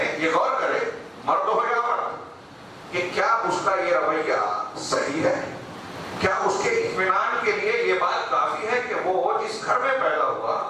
یہ غور کرے، مرد ہو یا مرد، کہ کیا اس کا یہ رویہ صحیح ہے، کیا اس کے اطمینان کے لیے یہ بات کافی ہے کہ وہ جس گھر میں پیدا ہوا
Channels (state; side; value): identical; both; correlation 1.00